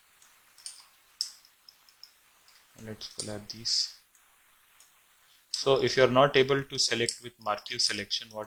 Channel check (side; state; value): both; identical; correlation 1.00